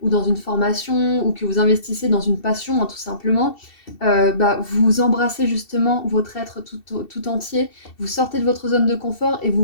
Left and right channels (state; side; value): late; right; 2.7 ms